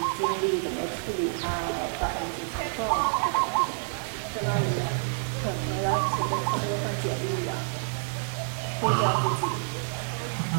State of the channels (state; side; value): silent; left; 59 dB below the other